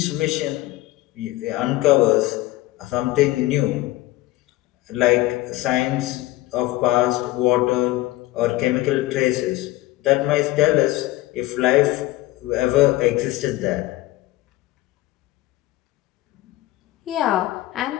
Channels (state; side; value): quieter; right; 17.6 dB